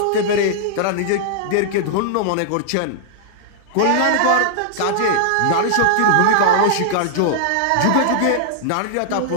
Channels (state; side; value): different; both; correlation -0.01